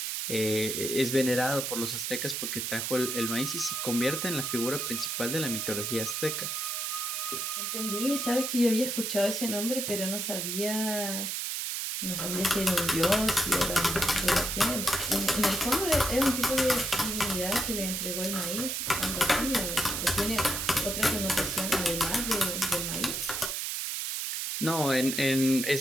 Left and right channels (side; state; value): right; noise; hiss, 2 dB below the sound